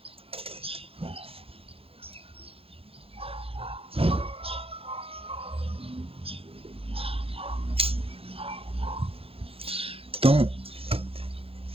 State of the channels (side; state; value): left; late; 0.27 ms